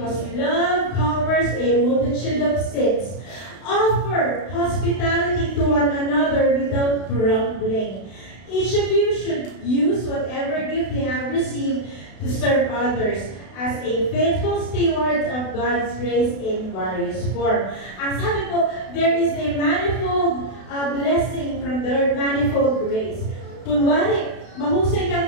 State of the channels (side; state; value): right; late; 32 ms